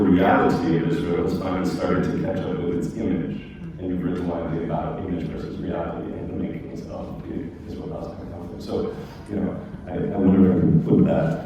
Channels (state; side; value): identical; both; correlation 1.00